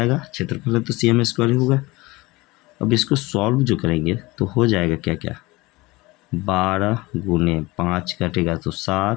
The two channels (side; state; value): right; quieter; 21.7 dB